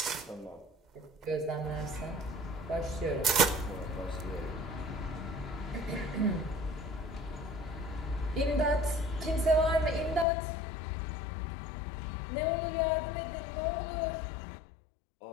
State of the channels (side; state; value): right; drops out; at 10.2 s